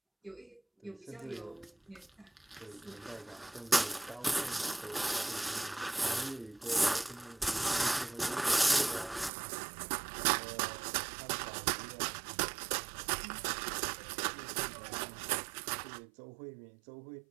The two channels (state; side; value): drops out; left; at 9.3 s